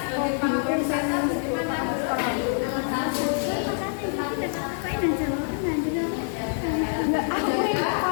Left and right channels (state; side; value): silent; right; 61 dB below the other